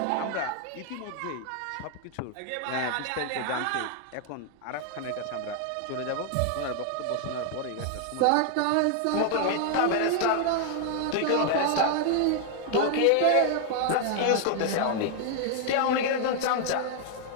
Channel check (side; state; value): both; different; correlation 0.00